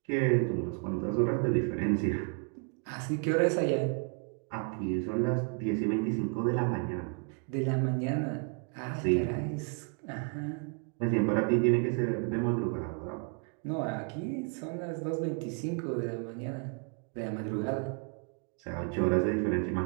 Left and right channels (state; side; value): quieter; left; 37.6 dB